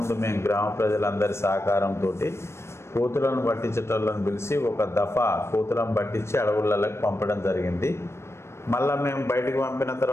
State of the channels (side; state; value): right; late; 0.13 ms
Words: మేము గ్రామ ప్రజలందరి సహకారంతో కోతులను పట్టించేటోళ్ళని పిలిచి ఒక దఫా కోతులను పట్టించి అడవులలోకి పంపడం జరిగింది. మళ్ళీ మేము బయటికి పంపిన